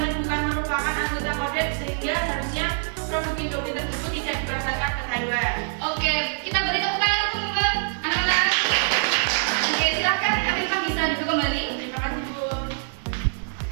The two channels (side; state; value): left; silent; digital silence